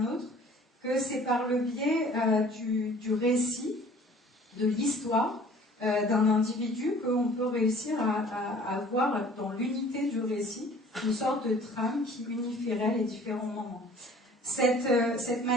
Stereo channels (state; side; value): normal; both; correlation 0.50